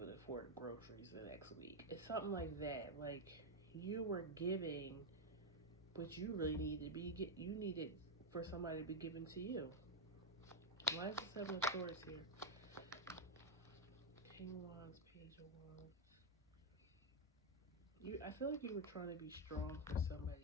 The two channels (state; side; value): normal; both; correlation 0.05